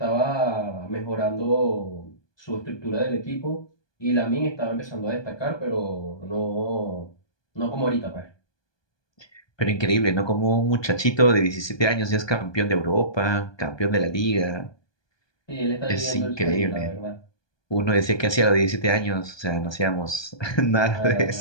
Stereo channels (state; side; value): late; right; 1.2 ms